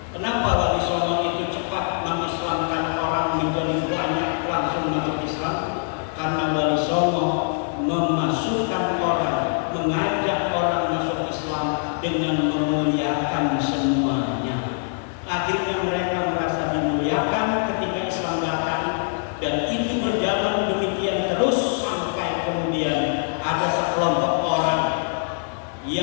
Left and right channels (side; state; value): right; silent; digital silence